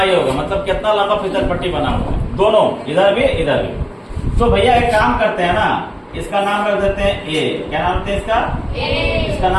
होगा, मतलब कितना लंबा फिसल पट्टी बना हुआ है, दोनों, इधर भी इधर भी। तो भैया एक काम करते हैं ना, इसका नाम रख देते हैं ए। क्या नाम रखते हैं इसका? ए। इसका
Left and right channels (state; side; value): identical; both; correlation 1.00